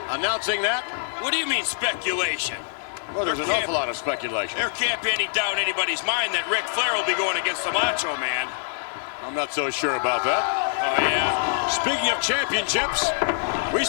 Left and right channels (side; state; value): right; silent; digital silence